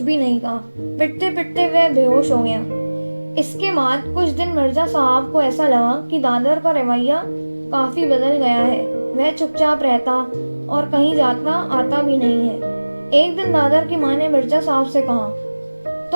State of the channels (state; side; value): inverted; both; correlation -1.00